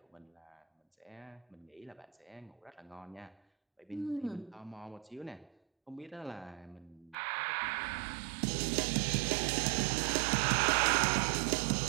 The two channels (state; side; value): drops out; left; at 7.2 s